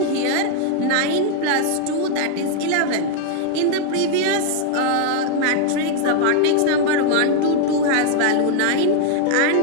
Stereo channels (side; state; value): both; different; correlation 0.00